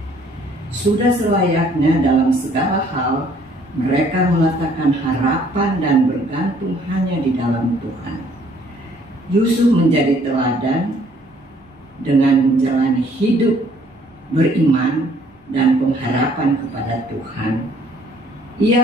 Sudah selayaknya dalam segala hal, mereka meletakkan harapan dan bergantung hanya di dalam Tuhan. Yusuf menjadi teladan dengan menjalani hidup beriman dan pengharapan kepada Tuhan.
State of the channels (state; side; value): normal; both; correlation 0.61